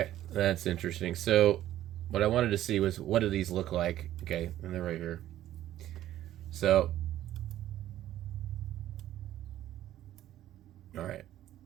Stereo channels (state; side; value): quieter; left; 13.1 dB